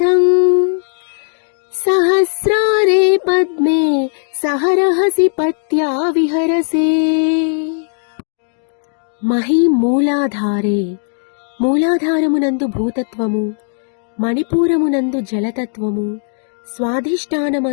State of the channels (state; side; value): silent; right; 65 dB below the other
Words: సహస్రారే పద్మే సహరహసి పత్యా విహరసే. మహీ మూలాధారే, మూలాధారమునందు భూతత్వము, మణిపూరమునందు జలతత్వము,